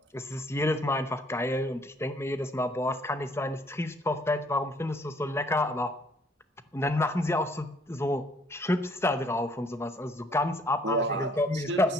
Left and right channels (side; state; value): both; normal; correlation 0.62